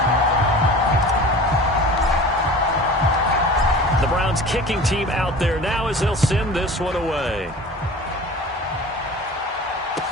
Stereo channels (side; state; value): both; normal; correlation 0.39